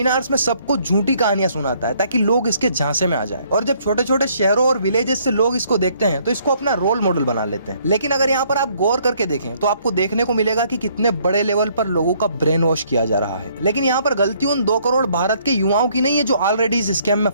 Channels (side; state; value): both; inverted; correlation -0.65